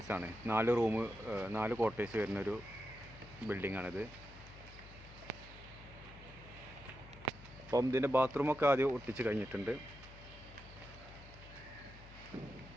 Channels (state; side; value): noise; left; hum, 17 dB below the sound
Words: 4 റൂം 4 കോട്ടേഴ്സ് വരുന്നൊരു ബിൽഡിങ്ങാണിത്. അപ്പം ഇതിൻ്റെ ബാത്റൂമൊക്കെ ആദ്യം ഒട്ടിച്ച് കഴിഞ്ഞിട്ടുണ്ട്.